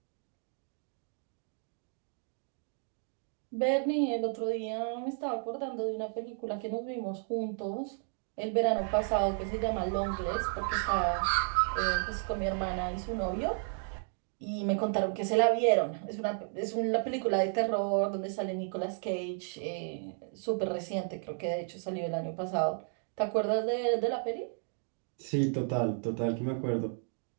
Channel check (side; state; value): left; silent; 56 dB below the other